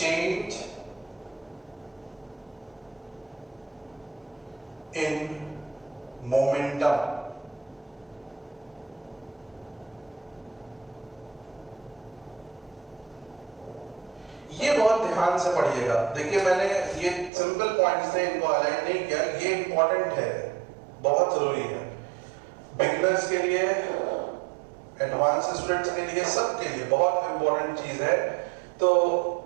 इन मोमेंटम। ये बहुत ध्यान से पढ़िएगा। देखिए मैंने ये सिंपल पॉइंट्स से इनको हाईलाइट नहीं किया, ये इंपॉर्टेंट है, बहुत जरूरी है बिगिनर्स के लिए, एडवांस स्टूडेंट्स के लिए, सबके लिए बहुत इंपॉर्टेंट चीज है। तो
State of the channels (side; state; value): left; drops out; at 17.3 s